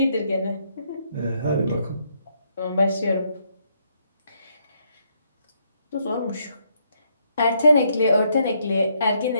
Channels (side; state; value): both; inverted; correlation -0.74